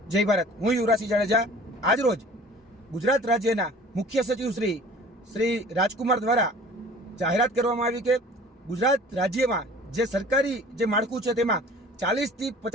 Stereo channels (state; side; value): normal; both; correlation 0.47